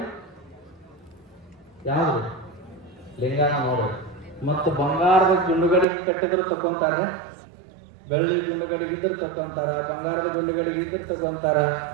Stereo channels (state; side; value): drops out; left; at 5.9 s